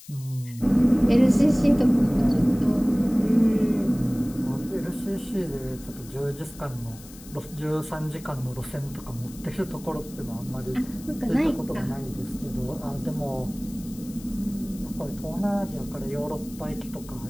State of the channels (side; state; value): left; noise; hiss, 19 dB below the sound